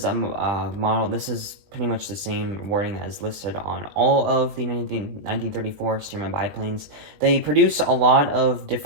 a model. This is pretty much the same wording that is listed on all of the 1934 Stearman biplanes. They produce a lot of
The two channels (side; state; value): left; late; 20 ms